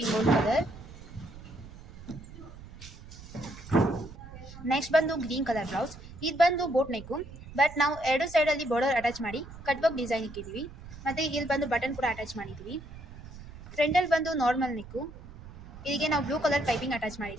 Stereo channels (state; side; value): noise; right; rumble, 15 dB below the sound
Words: ಗೋಲ್ಡ್ ಕಲರ್. ನೆಕ್ಸ್ಟ್ ಬಂದು ಗ್ರೀನ್ ಕಲರ್ ಬ್ಲೌಸ್, ಇದು ಬಂದು ಬೋಟ್ ನೆಕ್ಕು, ಬಟ್ ನಾವು ಎರಡು ಸೈಡಲ್ಲಿ ಬಾರ್ಡರ್ ಅಟ್ಯಾಚ್ ಮಾಡಿ ಕಟ್ ವರ್ಕ್ ಡಿಸೈನ್ ಇಕ್ಕಿದ್ದೀವಿ. ಮತ್ತು ಇಲ್ಲಿ ಬಂದು ಬಟನ್ ಕೂಡ ಅಟ್ಯಾಚ್ ಮಾಡಿದ್ದೀವಿ. ಫ್ರಂಟಲ್ಲಿ ಬಂದು ನಾರ್ಮಲ್ ನೆಕ್ಕು, ಇಲ್ಲಿಗೆ ನಾವು ಬ್ಲೂ ಕಲರ್ ಪೈಪಿಂಗ್ ಅಟ್ಯಾಚ್